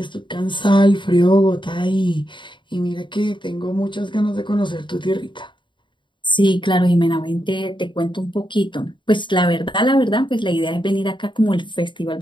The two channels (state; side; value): late; right; 0.23 ms